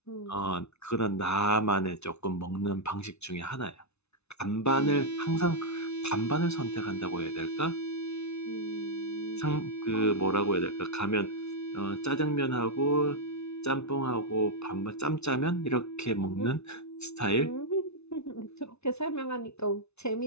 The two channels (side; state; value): right; late; 0.81 ms